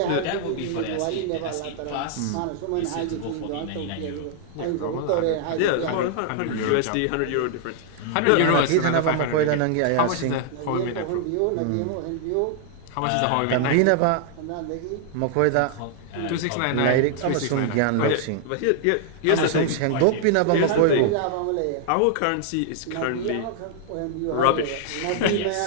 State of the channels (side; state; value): both; different; correlation -0.01